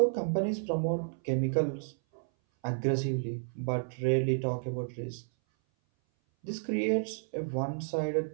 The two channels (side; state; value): left; silent; 57 dB below the other